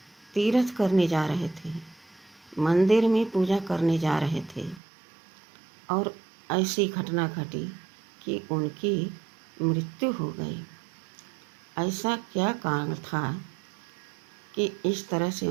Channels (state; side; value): drops out; left; at 4.8 s